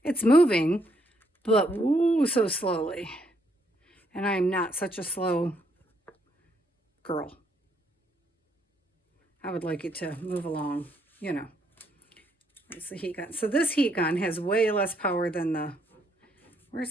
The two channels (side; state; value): both; normal; correlation 0.72